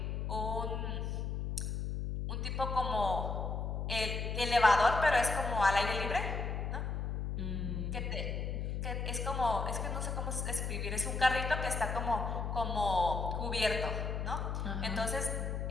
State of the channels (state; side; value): noise; left; hum, 2 dB below the sound